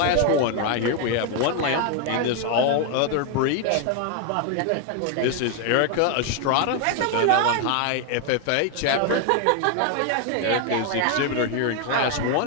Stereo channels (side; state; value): both; different; correlation 0.01